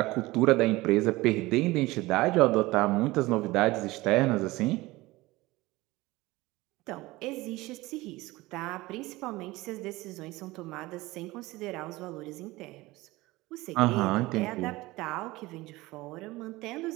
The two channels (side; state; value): left; quieter; 20.1 dB